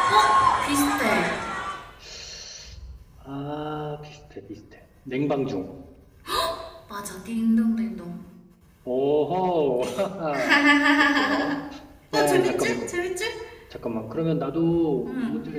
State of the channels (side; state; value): both; identical; correlation 1.00